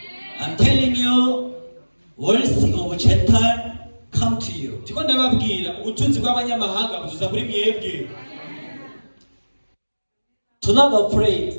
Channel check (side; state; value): both; inverted; correlation -1.00